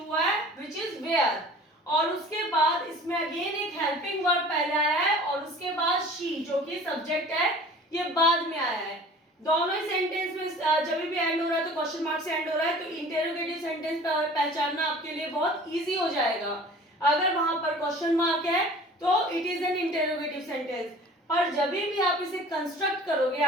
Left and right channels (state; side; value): normal; both; correlation 0.45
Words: हुआ है विच इज वेयर, और उसके बाद इसमें अगेन एक हेल्पिंग वर्ब पहले आया है और उसके बाद शी जो कि सब्जेक्ट है ये बाद में आया है। दोनों ही सेंटेंस में जब भी एंड हो रहा है तो क्वेश्चन मार्क से एंड हो रहा है, तो इंटरोगेटिव सेंटेंस पहचानना आपके लिए बहुत इजी हो जाएगा। अगर वहां पर क्वेश्चन मार्क है तो it is an interrogative sentence, और जब भी आप इसे कंस्ट्रक्ट करोगे